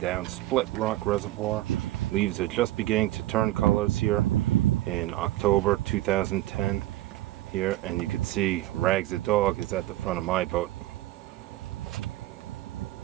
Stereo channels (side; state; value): left; quieter; 16.3 dB